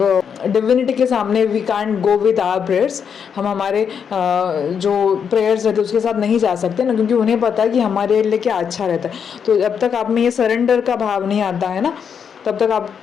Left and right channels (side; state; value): right; quieter; 7.2 dB